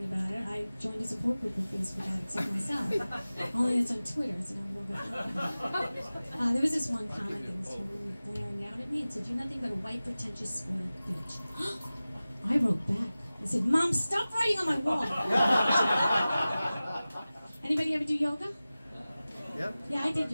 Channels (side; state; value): both; inverted; correlation -0.97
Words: about it. I joined a support group of Facebook addicts like myself. Only it's on Twitter, so now I'm going back. There was this one comment that was totally blaring out at me. It said, you're nothing but a white, pretentious, spoiled bitch. I wrote back. I said, Mom, stop writing on my wall. Anybody ever do yoga? Yep. Yeah, I did